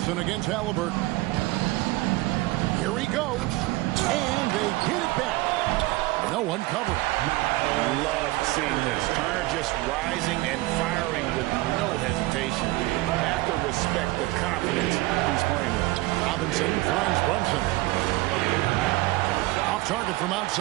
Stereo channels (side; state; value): left; quieter; 19.8 dB